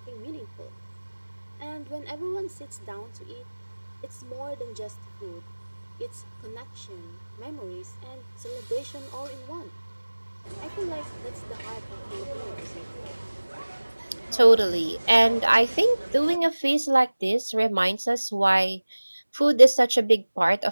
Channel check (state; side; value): inverted; both; correlation -1.00